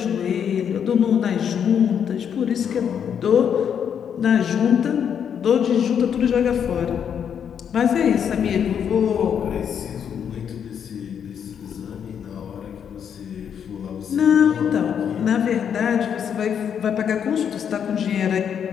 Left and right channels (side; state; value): right; quieter; 8.1 dB